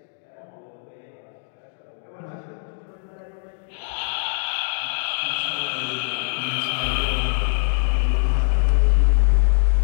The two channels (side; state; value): right; silent; 63 dB below the other